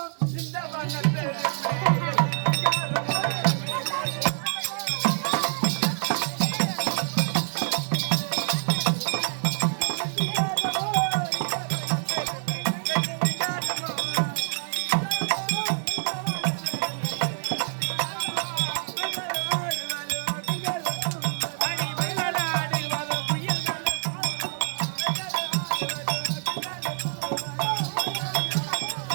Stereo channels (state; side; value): silent; left; digital silence